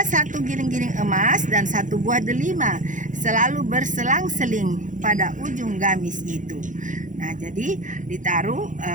satu giring-giring emas dan satu buah delima selalu berselang-seling pada ujung gamis itu. Nah, jadi ditaruh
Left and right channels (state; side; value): late; left; 0.37 ms